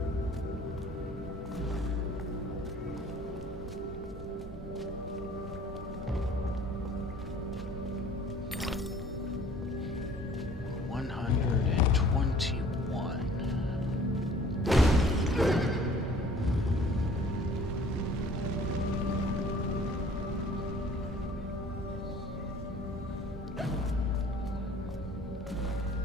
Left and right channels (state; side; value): normal; both; correlation 0.52